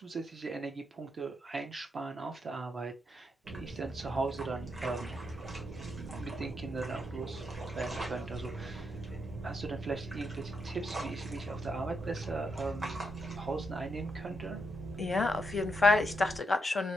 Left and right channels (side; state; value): both; normal; correlation 0.81